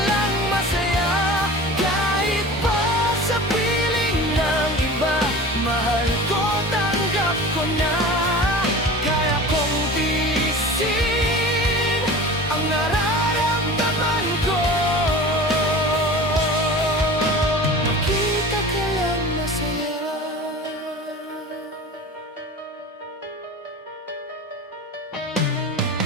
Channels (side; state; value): both; normal; correlation 0.36